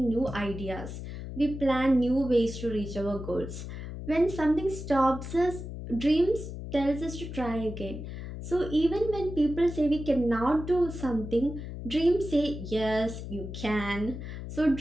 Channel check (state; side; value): noise; left; hum, 8 dB below the sound